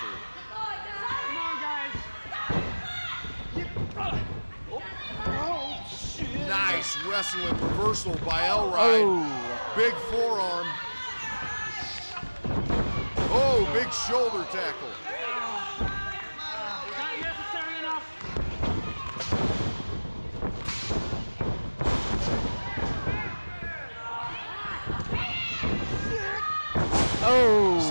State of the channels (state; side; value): inverted; both; correlation -1.00